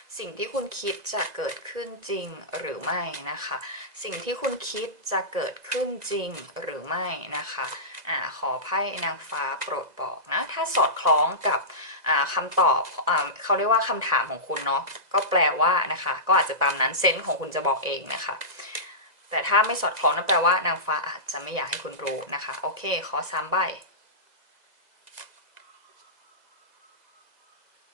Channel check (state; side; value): late; left; 2.0 ms